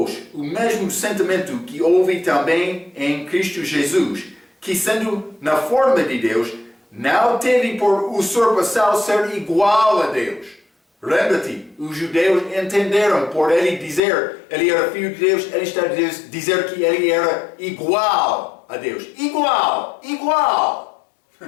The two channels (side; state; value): right; drops out; at 14.0 s